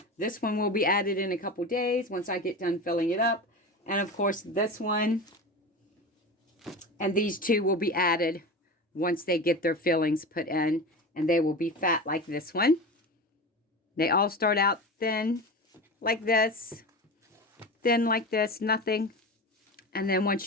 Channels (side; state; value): both; normal; correlation 0.28